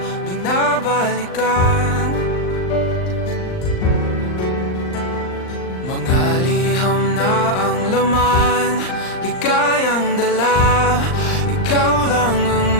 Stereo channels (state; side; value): late; right; 39 ms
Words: binabalikan, mga liham na ang laman, ligayang dala. Ikaw lang ang